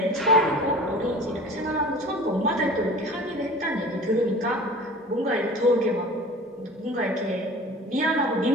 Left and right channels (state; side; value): normal; both; correlation 0.41